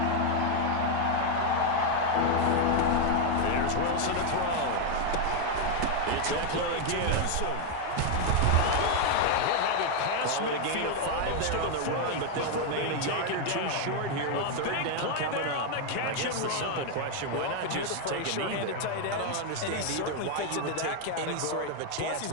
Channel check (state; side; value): different; both; correlation 0.01